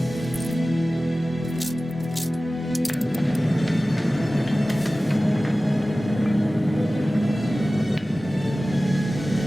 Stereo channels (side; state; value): both; normal; correlation 0.97